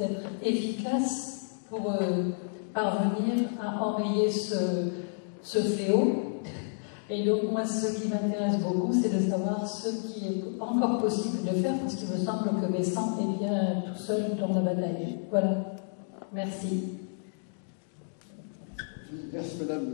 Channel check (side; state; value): right; silent; digital silence